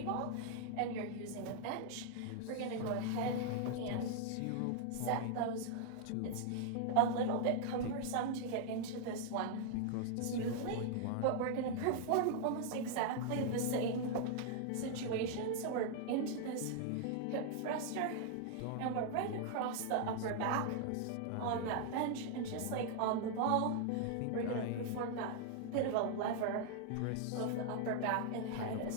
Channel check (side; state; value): both; different; correlation 0.00